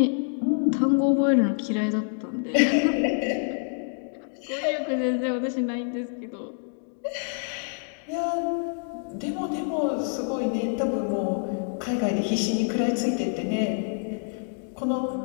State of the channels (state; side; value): silent; right; digital silence